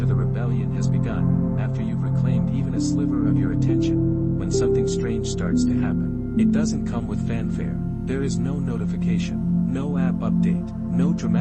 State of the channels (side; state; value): both; identical; correlation 1.00